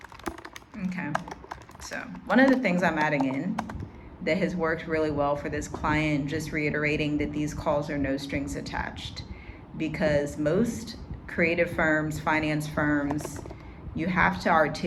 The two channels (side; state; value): both; identical; correlation 1.00